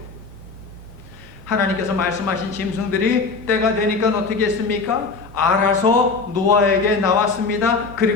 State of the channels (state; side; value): quieter; right; 4.3 dB